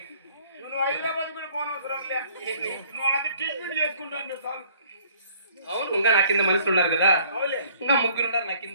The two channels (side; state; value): both; inverted; correlation -0.57